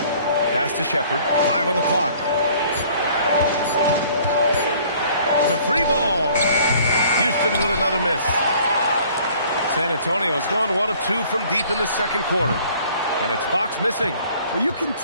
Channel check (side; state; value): both; inverted; correlation -0.55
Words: Pass to Shepherd. 5 on the clock. The 3 ball. Houston with another miss. San Antonio's gone 1 of 2 from deep in the second quarter. And it's Fox missing. Well, you can